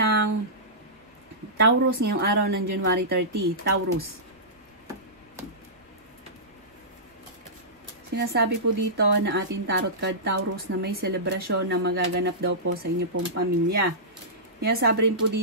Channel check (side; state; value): both; normal; correlation -0.18